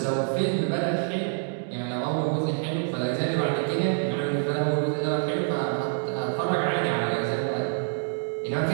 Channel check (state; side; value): silent; left; digital silence